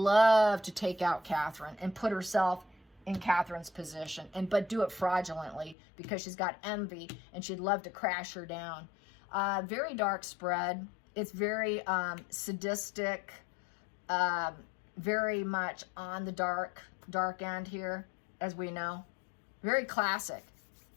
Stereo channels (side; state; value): right; drops out; at 5.8 s